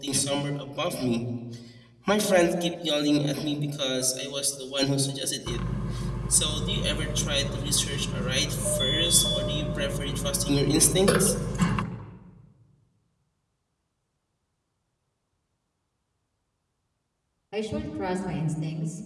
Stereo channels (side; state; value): both; identical; correlation 1.00